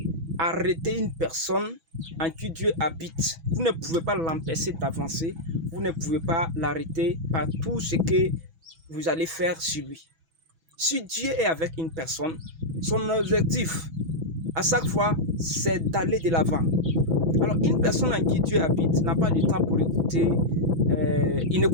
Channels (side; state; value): left; late; 6.1 ms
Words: arrêter une personne en qui Dieu habite. Vous ne pouvez pas l'empêcher d'avancer. Vous ne pouvez pas l'arrêter par tout ce que vous allez faire sur lui. Si Dieu est avec une personne, son objectif, à chaque fois, c'est d'aller de l'avant. Alors, une personne en qui Dieu habite n'a pas de temps pour écouter. Il